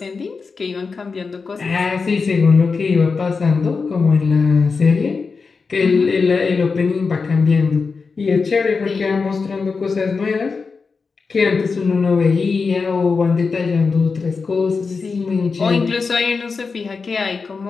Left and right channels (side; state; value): right; quieter; 4.8 dB